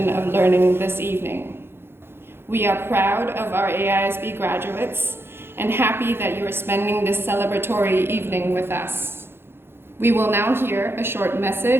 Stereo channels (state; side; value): late; left; 0.11 ms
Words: of learning this evening. We are proud of our AISB graduates and happy that you are spending this celebratory evening with us. We will now hear a short